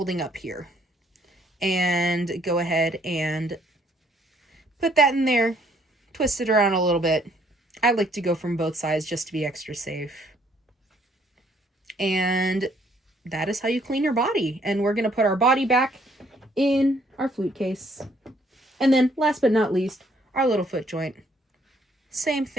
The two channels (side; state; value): both; normal; correlation 0.65